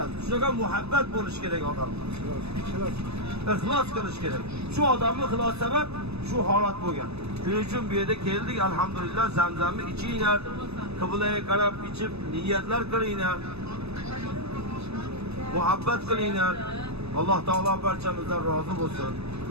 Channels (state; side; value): late; left; 0.79 ms